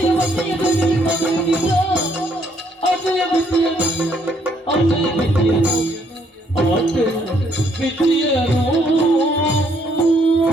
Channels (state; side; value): normal; both; correlation 0.69